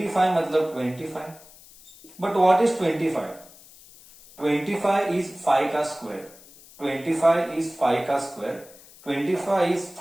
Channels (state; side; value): noise; left; hiss, 22 dB below the sound